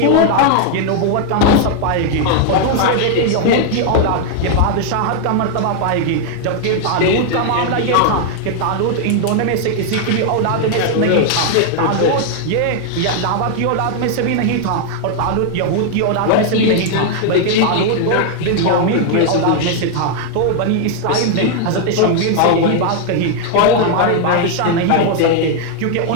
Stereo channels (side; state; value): both; different; correlation 0.00